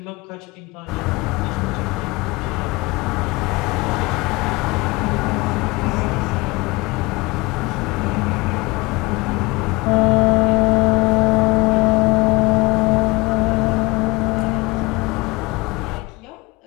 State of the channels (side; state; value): right; quieter; 23.9 dB